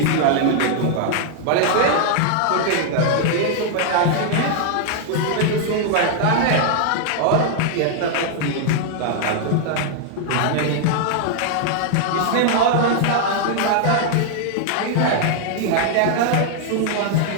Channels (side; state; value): both; different; correlation -0.01